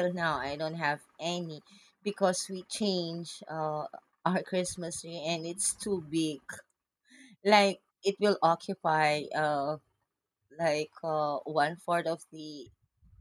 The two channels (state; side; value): identical; both; correlation 1.00